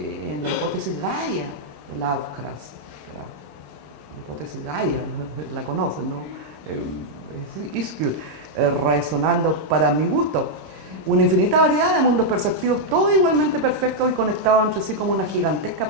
la hipótesis Gaia de Lovecraft. La hipótesis Gaia, la conocen, ¿no? Ischl, resonando para mi gusto. Una infinita variedad de mundos perceptivos, todos igualmente perfectos y conectados entre sí como una gigantesca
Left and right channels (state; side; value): late; left; 26 ms